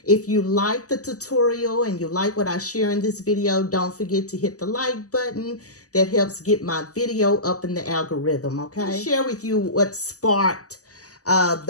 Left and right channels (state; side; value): late; right; 0.67 ms